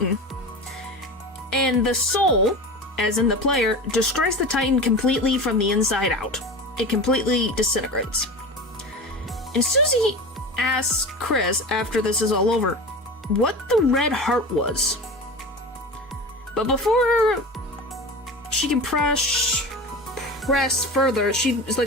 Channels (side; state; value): both; normal; correlation 0.30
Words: and the soul, as in the player, destroys the Titan completely from the inside out. It completely disintegrates. And Susie asks Chris, after this is all over, what the red heart was. But before she can press further, she is